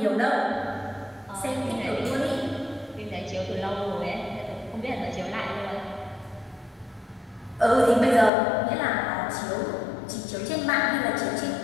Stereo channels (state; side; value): drops out; right; at 8.3 s